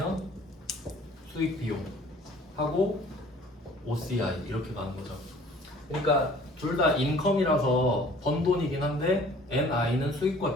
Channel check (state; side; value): normal; both; correlation 0.52